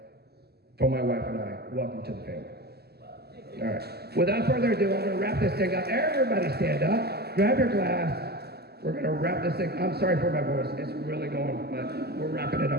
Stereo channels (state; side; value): late; left; 0.46 ms